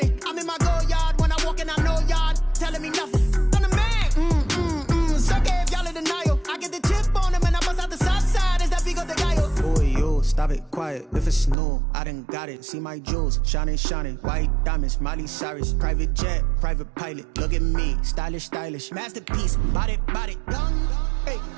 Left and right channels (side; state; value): left; drops out; at 11.6 s